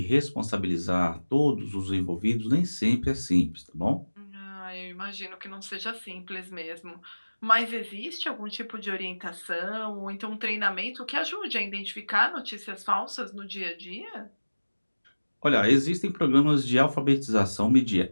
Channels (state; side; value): inverted; both; correlation -1.00